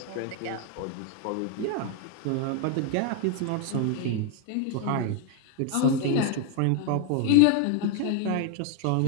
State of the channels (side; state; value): both; different; correlation 0.00